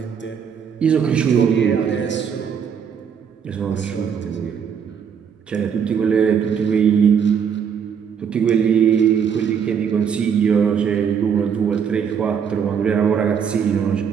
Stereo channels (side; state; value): left; quieter; 7.3 dB